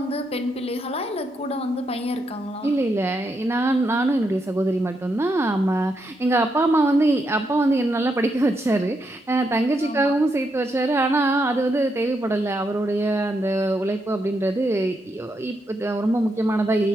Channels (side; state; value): both; normal; correlation 0.81